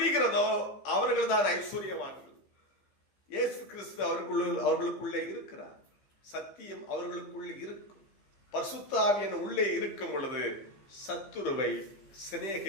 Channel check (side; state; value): right; late; 15 ms